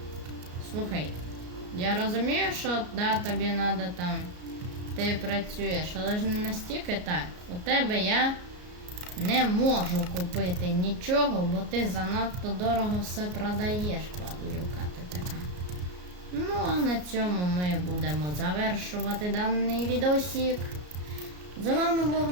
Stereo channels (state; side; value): late; left; 33 ms